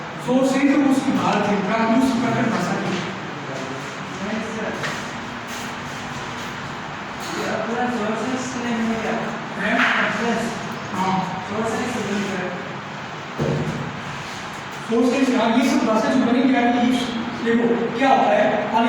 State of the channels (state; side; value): identical; both; correlation 1.00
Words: सोर्स है तो उसकी भारत है, दूसरी प्राकृत भाषा की सोर्सेस। हाँ ये सब भाषा जो बनी क्या है, देखो क्या होता है,